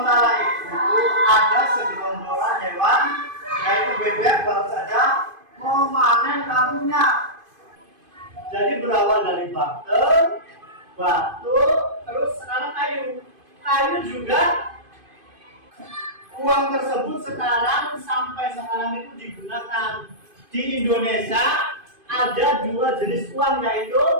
itu ada segerombolan hewan, yaitu bebek, baru saja memanen kampungnya. Jadi berawal dari barter, batu, terus sekarang kayu. Kayu juga uang tersebut sampai sekarang itu digunakan. Di Indonesia ada dua jenis uang, yaitu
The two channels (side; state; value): left; late; 2.5 ms